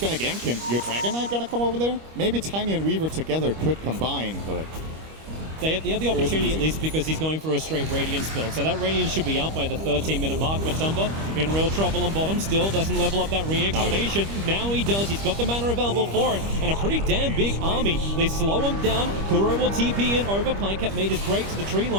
to gank him? Your Dragon Knight going to come over there? Maybe Tiny and Weaver together could combine, but They have the opportunity at least because he's going for a straight Radiance build. So that Radiance should be up by the 13-minute mark. Matumba in real trouble on bottom. Still doesn't level up that Reincarnation. Now he does. He's got the mana available for it. And a pretty damn big army. They slow him down. Kuro will TP in over. Pycat made his break to the tree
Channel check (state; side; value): late; left; 25 ms